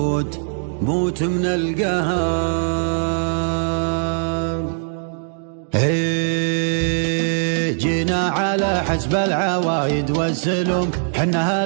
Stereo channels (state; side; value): silent; left; digital silence